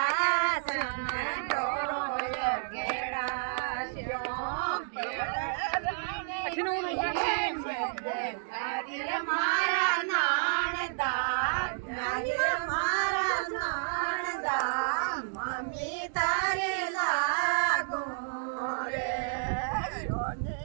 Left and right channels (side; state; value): left; silent; digital silence